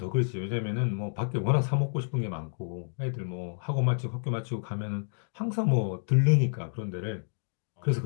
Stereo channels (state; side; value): silent; right; digital silence